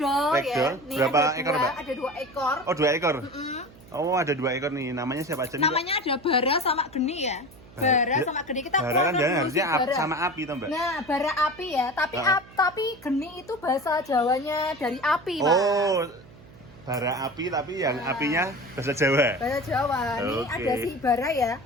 ya. Ragdoll. Nih, Berapa ada ekor, Mbak? Ada 2 ekor. Oh, 2 ekor. Oh, ada 2 ekor nih. Namanya siapa aja nih, Mbak? Namanya ada Bara sama Geni ya. Bara sama Geni, kita Bara kan keluarkan jangan dulu harusnya si Bara. sama api toh Mbak? Nah, bara api ya, tapi Geni itu bahasa Jawanya dari api, Mas. Oh, bara api tapi yang apinya bahasa Jawa. Bahasa Jawa. Nih Oke. ada si Bara ya.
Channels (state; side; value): noise; right; hum, 22 dB below the sound